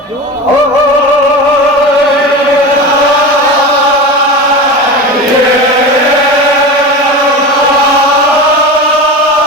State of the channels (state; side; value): normal; both; correlation 0.27